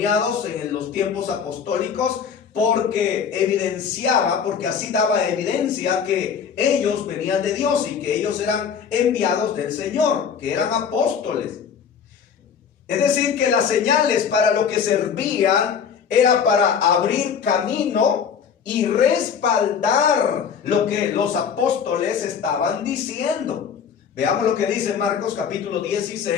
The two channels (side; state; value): right; quieter; 7.1 dB